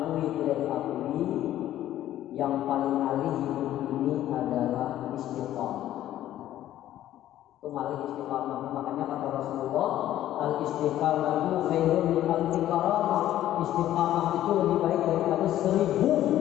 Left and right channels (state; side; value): quieter; right; 12.9 dB